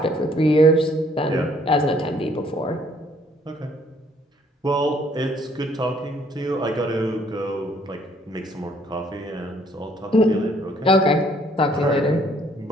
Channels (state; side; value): normal; both; correlation 0.63